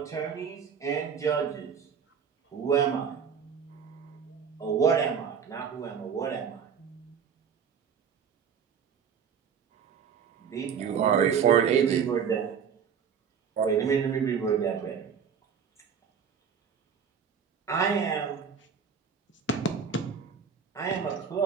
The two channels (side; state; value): left; quieter; 7.0 dB